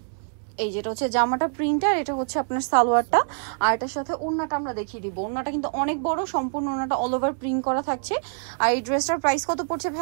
এই যেটা হচ্ছে জামাটা প্রিন্টার, এটা হচ্ছে আপনার সালোয়ারটা। আর এটার সাথে ওড়নাটা আমরা দেখিয়ে দিব। ওড়নাটা কিন্তু অনেক বড়, সম্পূর্ণ ওড়নাটা অল ওভার প্রিন্ট করা থাকছে। আর এই ড্রেসটার প্রাইস কত পড়ছে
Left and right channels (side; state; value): left; silent; 62 dB below the other